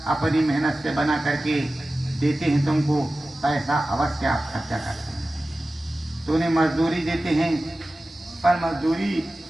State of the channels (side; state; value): both; normal; correlation 0.96